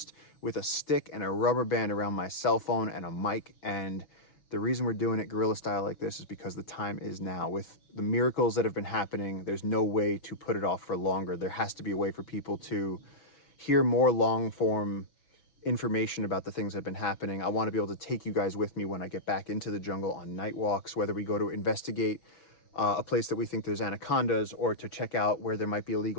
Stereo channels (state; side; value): late; right; 6.1 ms